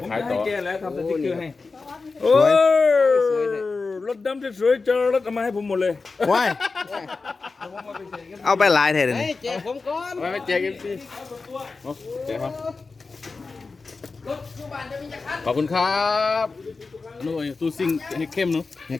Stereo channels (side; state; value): right; quieter; 4.1 dB